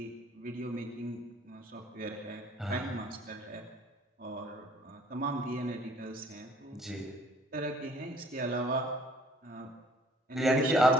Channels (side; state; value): both; normal; correlation 0.58